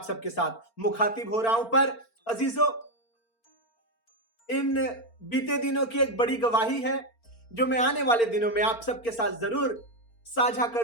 सबके साथ मुखातिब हो रहा हूं, पर अजीजों, इन बीते दिनों की एक बड़ी गवाही है जो मैं आने वाले दिनों में आप सबके साथ जरूर साझा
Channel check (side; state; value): right; late; 4.4 ms